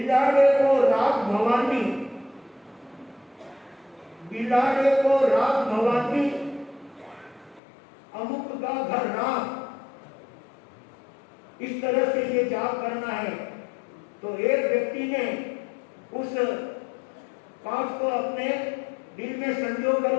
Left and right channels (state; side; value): drops out; right; at 7.6 s